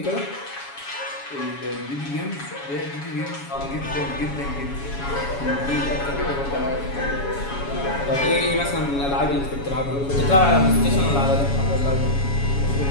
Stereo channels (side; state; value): right; late; 7.2 ms